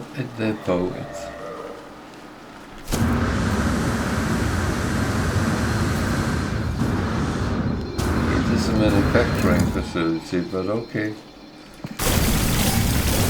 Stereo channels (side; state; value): both; identical; correlation 1.00